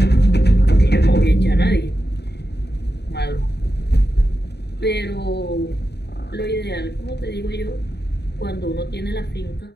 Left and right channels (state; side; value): late; right; 0.49 ms